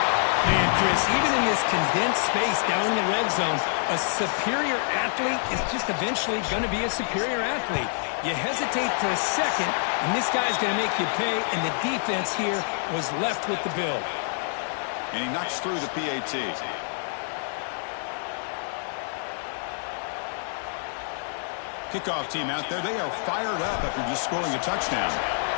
Man, Chris, even in this condensed space down in the red zone, a superior athlete is just eventually going to be a superior athlete. You hesitate for a second, and this guy's going to make you pay, and the defense here was left with the bill. And he knocks through the PAT. Kickoff team out there, they are fired up after just scoring a touchdown.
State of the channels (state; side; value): silent; right; digital silence